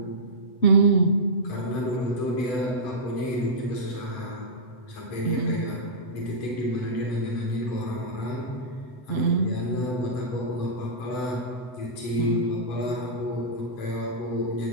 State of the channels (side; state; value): right; late; 7.9 ms